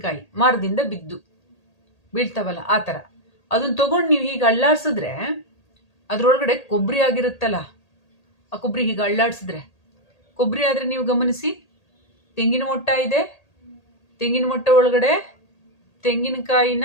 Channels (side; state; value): right; late; 1.8 ms